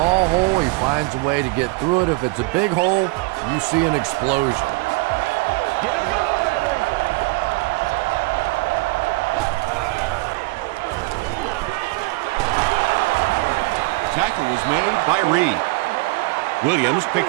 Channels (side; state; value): left; quieter; 24.6 dB